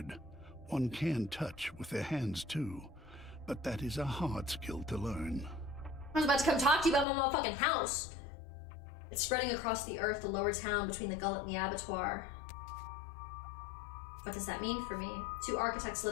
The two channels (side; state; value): right; drops out; at 7.1 s